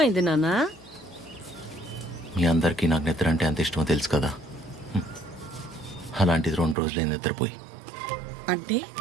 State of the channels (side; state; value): left; drops out; at 6.8 s